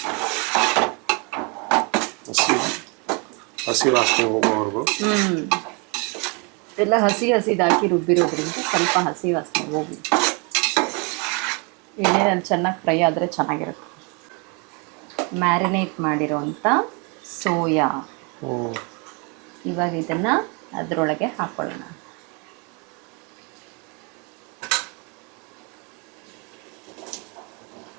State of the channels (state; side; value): quieter; left; 32.7 dB